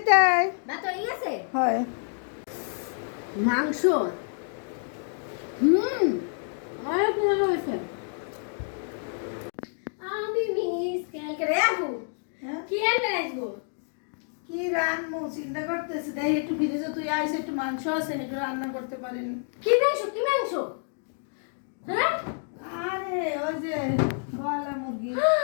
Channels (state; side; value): silent; right; 59 dB below the other